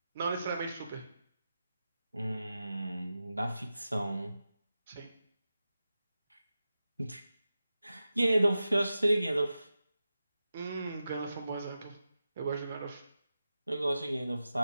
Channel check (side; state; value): both; inverted; correlation -0.92